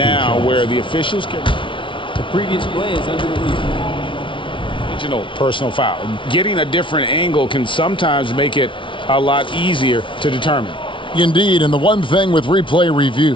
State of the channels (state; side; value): late; right; 0.25 ms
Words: where the officials can... The previous play is under review. Personal foul. Getting a different angle can sometimes make it a lot easier to determine. Indeed, and the one thing with replay